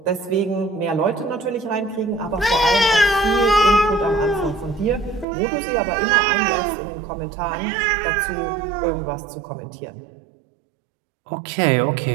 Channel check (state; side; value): drops out; left; at 5.2 s